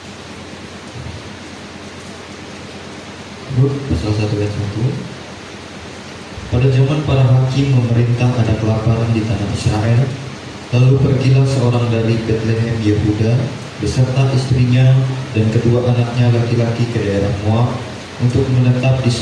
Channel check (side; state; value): both; identical; correlation 1.00